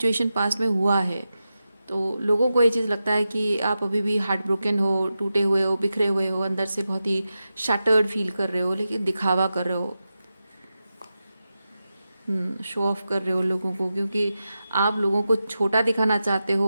पास्ट में हुआ है। तो लोगों को ये चीज़ लगता है कि आप अभी भी हार्ट ब्रोकन हो, टूटे हुए हो, बिखरे हुए हो, अंदर से बहुत ही शैटर्ड फील कर रहे हो, लेकिन दिखावा कर रहे हो, शो ऑफ कर रहे हो लोगों को, क्योंकि आप लोगों को छोटा दिखाना चाहते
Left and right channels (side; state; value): both; inverted; correlation -0.91